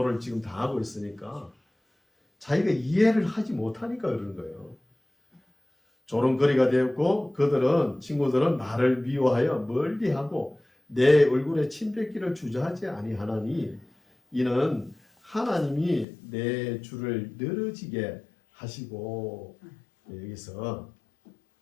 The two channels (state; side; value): drops out; right; at 16.1 s